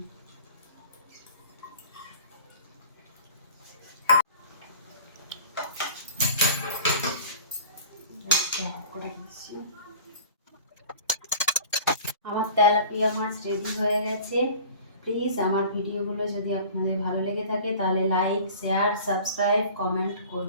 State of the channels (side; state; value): both; inverted; correlation -0.43